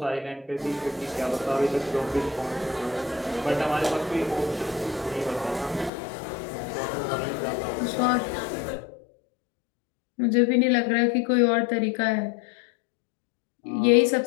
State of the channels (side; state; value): right; drops out; at 5.9 s